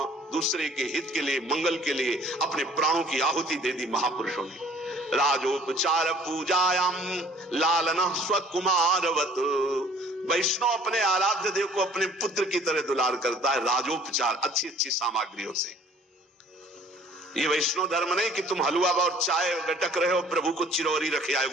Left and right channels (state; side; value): normal; both; correlation 0.55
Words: दूसरे के हित के लिए, मंगल के लिए अपने प्राणों की आहुति दे दी महापुरुषों ने। राजोपचार पूजायाम लालना स्वकुमारवत, वैष्णव अपने आराध्य देव को अपने पुत्र की तरह दुलार करता है, राजोपचार, अच्छी अच्छी सामग्रियों से। ये वैष्णव धर्म नहीं कि तुम हलवा और चाय गटक रहे हो, प्रभु को चिरौरी रखे आए